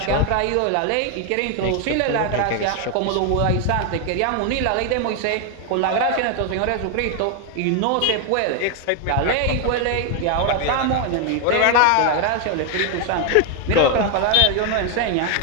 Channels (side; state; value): both; different; correlation 0.01